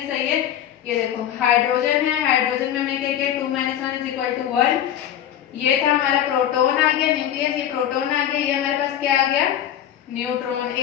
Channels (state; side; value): quieter; right; 10.7 dB